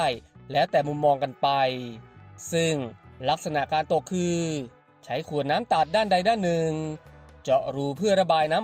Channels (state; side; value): identical; both; correlation 1.00